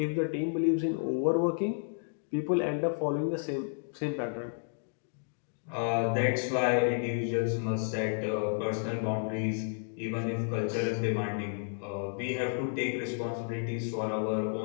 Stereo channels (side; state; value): right; silent; digital silence